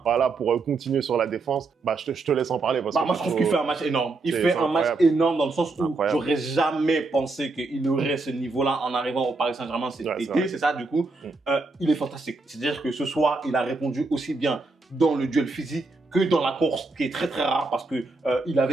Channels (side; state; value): left; quieter; 3.5 dB